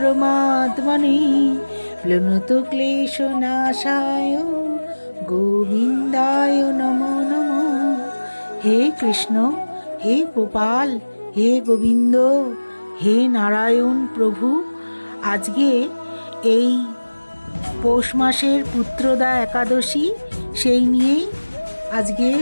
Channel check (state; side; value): inverted; both; correlation -1.00